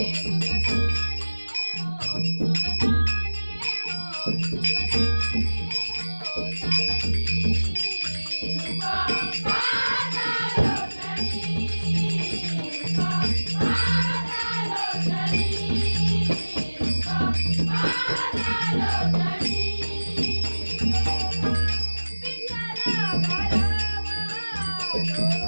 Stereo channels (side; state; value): both; inverted; correlation -1.00